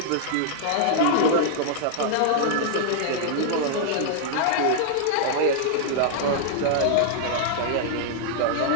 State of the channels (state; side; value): different; both; correlation -0.01